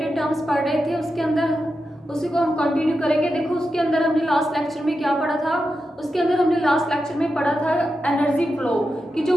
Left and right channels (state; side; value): normal; both; correlation 0.89